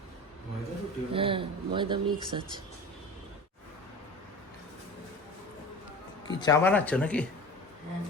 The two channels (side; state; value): both; normal; correlation 0.34